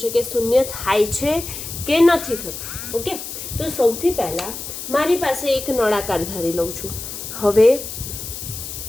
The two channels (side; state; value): left; noise; hiss, 8 dB below the sound